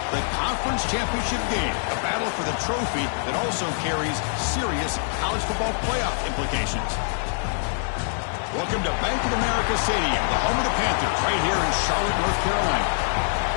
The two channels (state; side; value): silent; right; digital silence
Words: the conference championship game, a battle for the trophy that also carries serious college football playoff implications. Welcome to Bank of America Stadium, the home of the Panthers, right here in Charlotte, North Carolina,